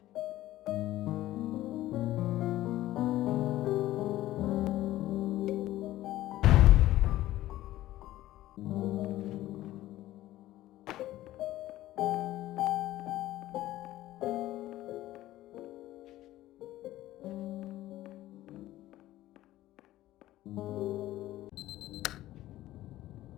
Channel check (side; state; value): right; quieter; 15.2 dB